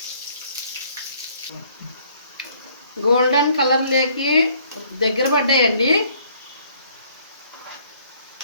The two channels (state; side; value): inverted; both; correlation -0.61